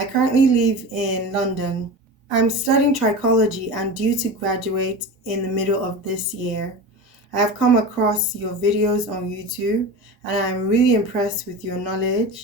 currently live in London. I'm studying trichology and due to graduate in the middle of this year. I have come across your videos on YouTube and I'm really impressed with your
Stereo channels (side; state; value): both; normal; correlation 0.29